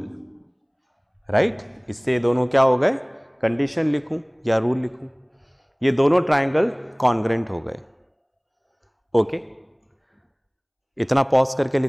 right. इससे ये दोनों क्या हो गए, कंडीशन लिखूं या रूल लिखूं, ये दोनों ट्राइंगल कॉन्ग्रेंट हो गए, ओके। इतना पॉज करके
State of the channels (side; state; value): both; identical; correlation 1.00